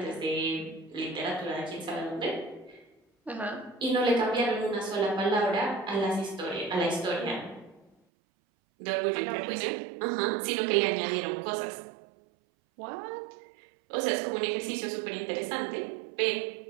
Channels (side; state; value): left; drops out; at 7.9 s